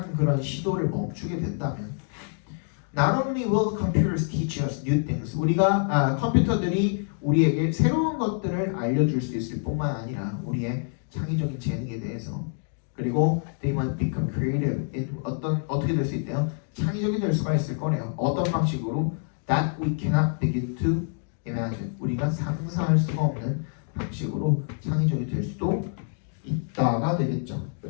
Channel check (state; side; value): silent; right; 56 dB below the other